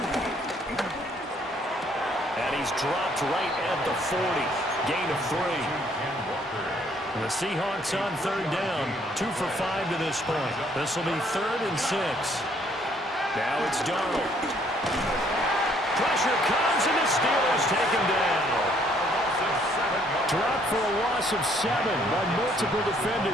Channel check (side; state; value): both; normal; correlation 0.65